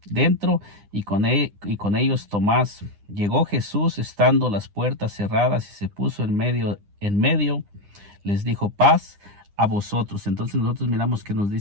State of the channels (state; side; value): late; left; 9.9 ms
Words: dentro y con ellos Tomás. Llegó Jesús estando las puertas cerradas y se puso en medio, les dijo paz a vosotros. Entonces nosotros miramos que nos